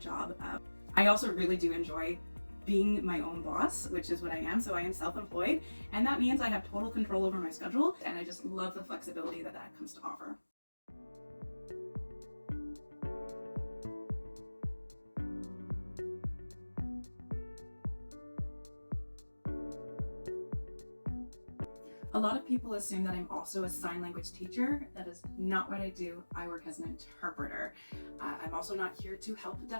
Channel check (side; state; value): both; inverted; correlation -1.00